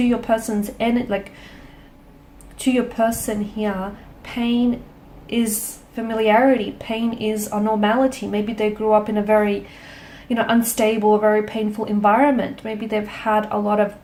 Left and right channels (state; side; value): identical; both; correlation 1.00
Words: your person's end, like to your person here, pain is familiarity. Pain is a normality. Maybe they grew up in a very, you know, unstable, very painful environment. Maybe they've had a lot of